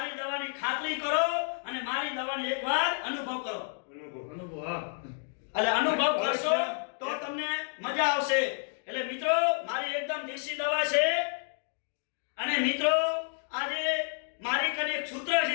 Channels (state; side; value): silent; right; 58 dB below the other